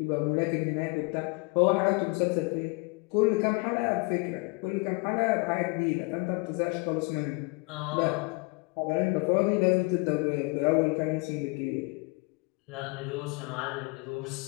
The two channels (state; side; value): quieter; right; 29.0 dB